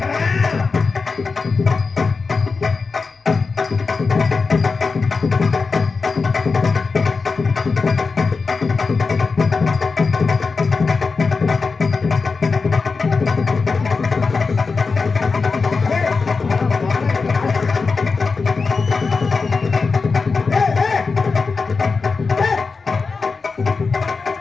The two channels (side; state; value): right; quieter; 4.5 dB